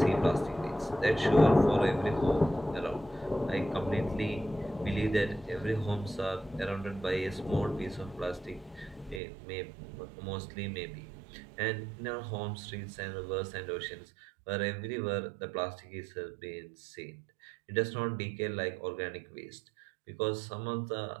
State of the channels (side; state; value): left; drops out; at 9.2 s